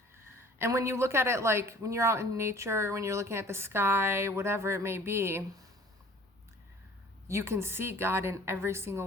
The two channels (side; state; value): both; normal; correlation 0.50